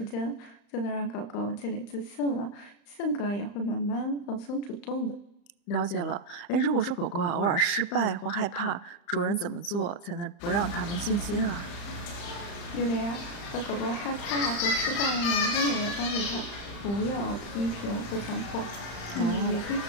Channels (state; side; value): late; right; 35 ms